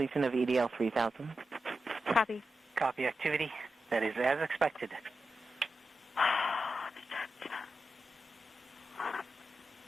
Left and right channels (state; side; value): normal; both; correlation 0.90